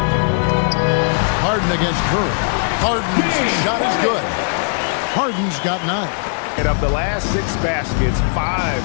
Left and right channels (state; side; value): silent; right; 65 dB below the other